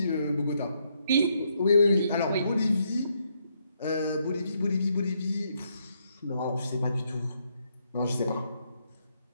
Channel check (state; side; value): inverted; both; correlation -0.76